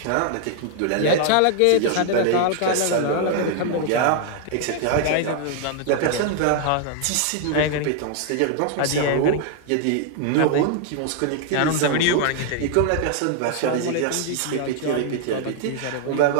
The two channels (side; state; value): both; different; correlation 0.00